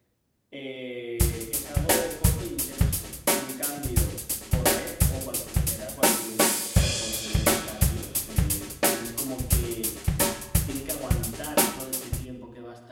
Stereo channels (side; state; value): both; identical; correlation 1.00